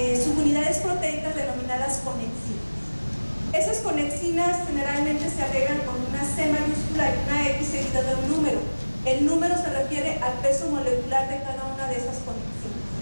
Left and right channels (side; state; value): both; inverted; correlation -1.00